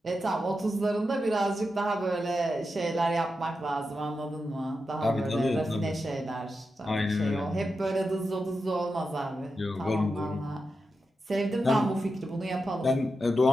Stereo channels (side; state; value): both; normal; correlation 0.89